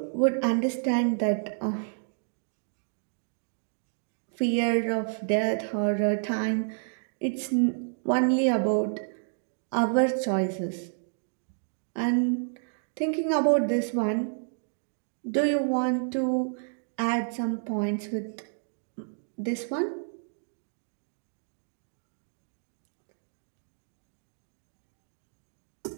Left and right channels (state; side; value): silent; left; digital silence